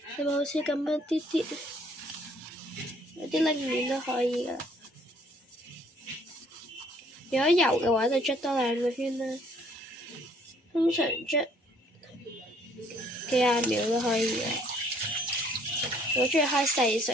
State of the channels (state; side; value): normal; both; correlation 0.62